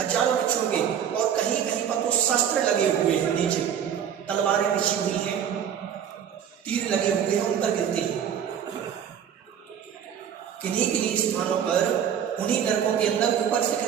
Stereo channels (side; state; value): left; quieter; 8.7 dB